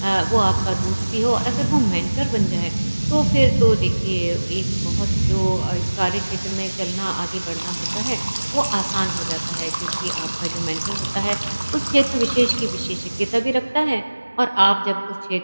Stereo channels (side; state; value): both; inverted; correlation -1.00